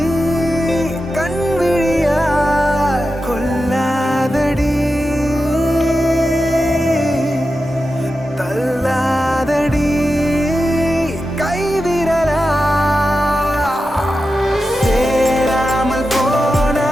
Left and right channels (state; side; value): normal; both; correlation 0.91